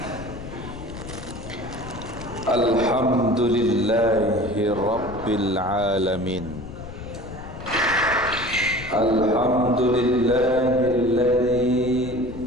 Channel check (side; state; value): left; noise; rumble, 12 dB below the sound